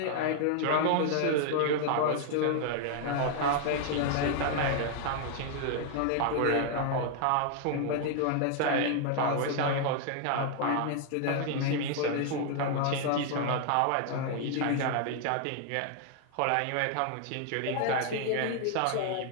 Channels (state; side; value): different; both; correlation 0.00